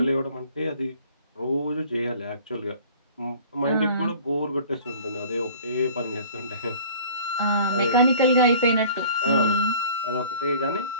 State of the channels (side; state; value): both; inverted; correlation -0.47